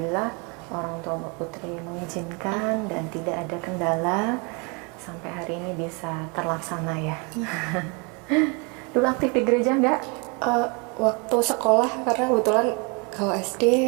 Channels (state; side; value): quieter; left; 31.8 dB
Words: orang tua Mbak Putri mengizinkan dan tidak ada kendala sampai hari ini bisa terlaksana ya. Dulu aktif di gereja nggak? Waktu sekolah, karena kebetulan kalau SD